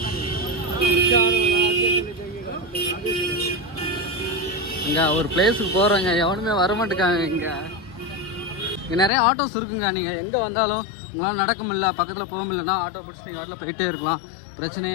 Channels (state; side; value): drops out; right; at 9.1 s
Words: இங்கே ஒரு பிளேஸுக்கு போகிறோங்க, எவனுமே வரமாட்டேக்காங்க. இங்கே நிறைய ஆட்டோஸ் இருக்குங்க. நீங்கள் எங்கே வந்தாலும் உங்களால் நடக்க முடியல, பக்கத்தில் போக முடியலன்னா ஆட்டோ பிடிச்சி நீங்கள் வாட்டில் போயிட்டே இருக்கலாம்,